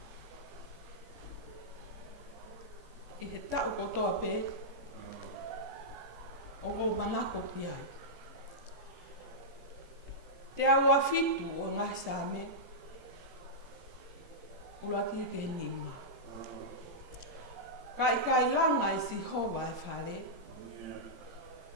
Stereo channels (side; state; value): left; late; 17 ms